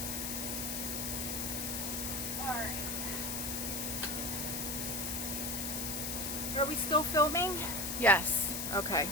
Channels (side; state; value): left; noise; hiss, 2 dB below the sound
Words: Alright. Are we still filming? Yes. Okay.